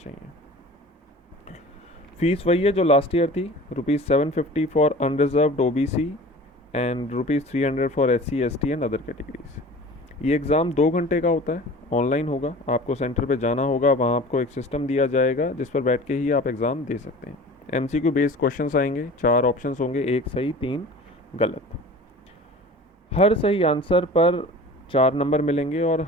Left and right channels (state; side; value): normal; both; correlation 0.40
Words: फीस वही है जो लास्ट ईयर थी, ₹750 for unreserved OBC and ₹300 for SC, ST and other categories. ये एग्ज़ाम 2 घंटे का होता है, ऑनलाइन होगा। आपको सेंटर पे जाना होगा, वहाँ आपको एक सिस्टम दिया जाएगा जिस पर बैठ के ही आप एग्ज़ाम दे सकते हैं। एमसीक्यू बेस्ड क्वेश्चंस आएंगे, 4 ऑप्शंस होंगे, 1 सही 3 गलत। हर सही आंसर पर 4 नंबर मिलेंगे और